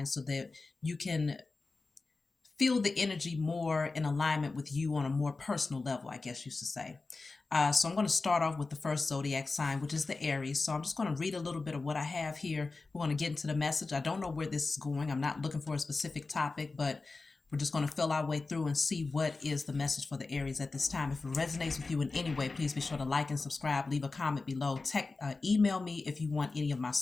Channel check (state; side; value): quieter; right; 3.8 dB